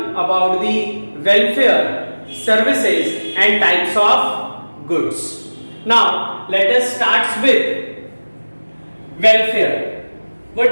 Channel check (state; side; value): inverted; both; correlation -1.00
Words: about the welfare, services and types of goods. Now let us start with welfare.